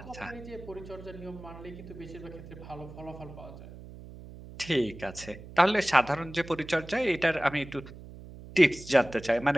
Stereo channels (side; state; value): right; noise; hum, 15 dB below the sound